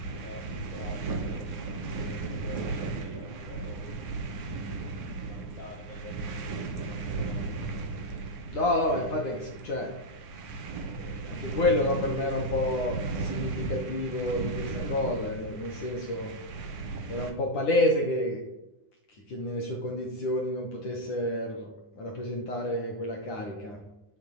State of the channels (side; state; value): right; late; 9.9 ms